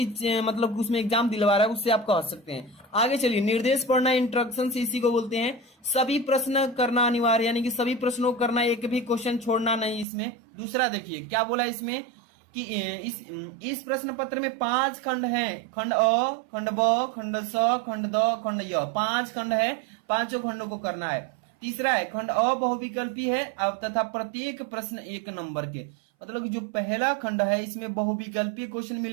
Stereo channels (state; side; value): drops out; left; at 10.1 s